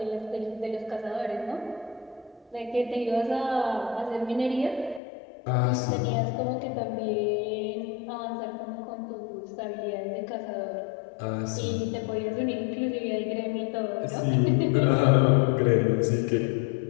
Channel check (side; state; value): right; drops out; at 5.0 s